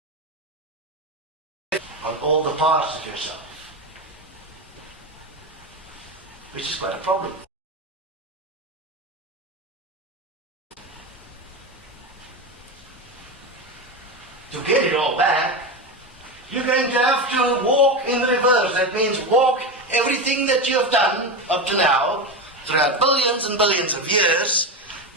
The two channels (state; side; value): normal; both; correlation 0.18